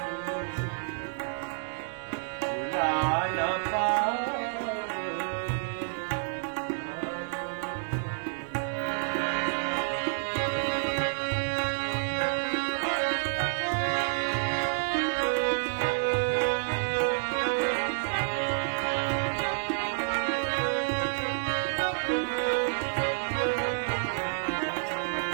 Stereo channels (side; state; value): left; silent; digital silence